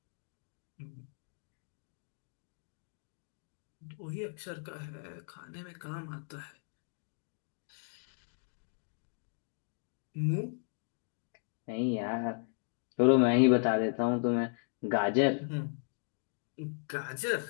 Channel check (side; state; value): right; silent; digital silence